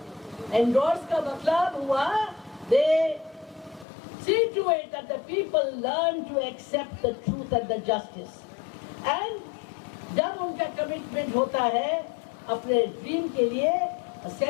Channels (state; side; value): drops out; right; at 3.9 s